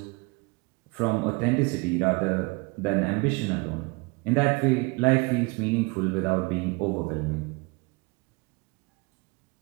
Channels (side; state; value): left; quieter; 28.0 dB